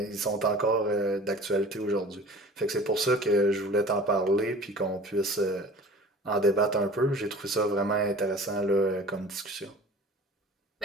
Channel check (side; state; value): both; normal; correlation 0.44